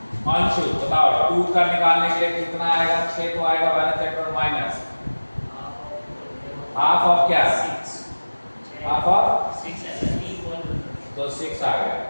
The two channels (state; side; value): inverted; both; correlation -1.00